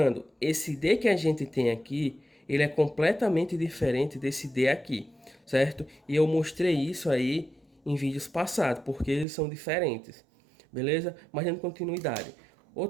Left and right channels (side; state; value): left; drops out; at 9.2 s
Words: esse D que a gente tem aqui, ele é completamente diferente desse D aqui, certo? E eu mostrei isso aí em vídeos passados, porque eles são diferentes, beleza? Mas dando continuidade.